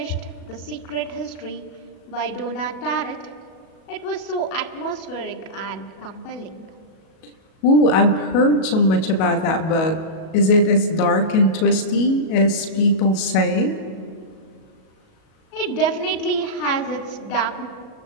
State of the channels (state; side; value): late; right; 37 ms